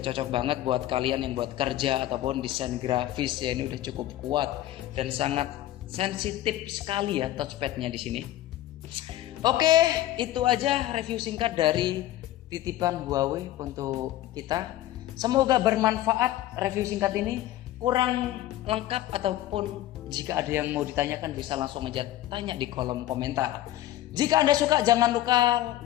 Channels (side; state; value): right; quieter; 14.2 dB